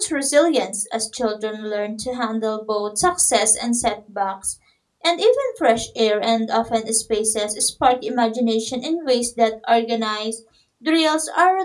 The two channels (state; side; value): identical; both; correlation 1.00